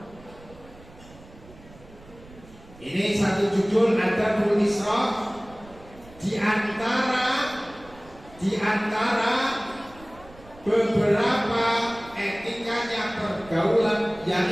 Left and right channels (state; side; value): noise; right; rumble, 22 dB below the sound